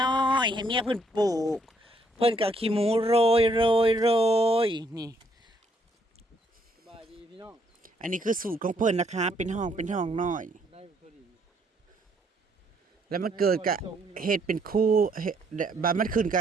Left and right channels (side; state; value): both; normal; correlation 0.69